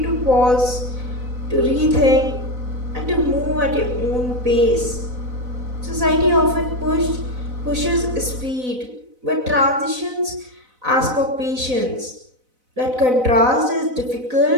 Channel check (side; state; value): left; late; 4.0 ms